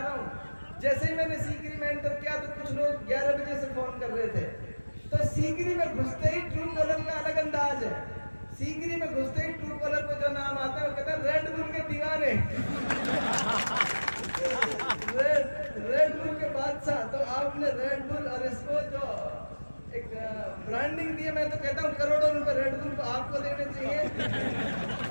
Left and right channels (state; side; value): inverted; both; correlation -1.00